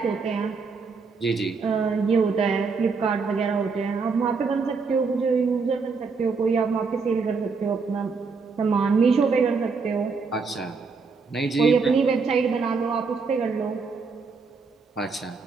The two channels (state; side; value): quieter; left; 4.8 dB